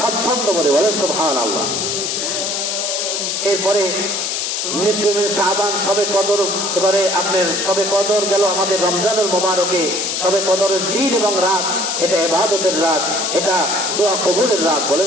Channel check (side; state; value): left; noise; hiss, 1 dB below the sound